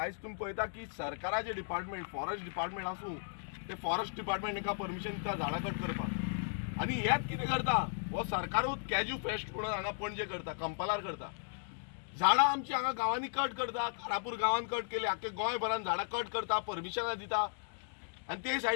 तुमी पळयता की सरकाराचे डिपार्टमेंट, फॉरेस्ट डिपार्टमेंट आसूं, ते फॉरेस्ट डिपार्टमेंट हांकां परमिशन दिता झाडां कट करपाक. आनी हेच कितें करता? हो सरकारूच कॅज्यू फेस्ट म्हणून हांगा पणजे करता, कंपालार करता. झाडां आमची हांगा गांवांनी कट करता. कारापूर गांवांत कट केली, आख्खे गोंयभरान झाडां कट करता, परमिशनां दिता. आनी ते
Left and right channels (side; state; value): right; silent; digital silence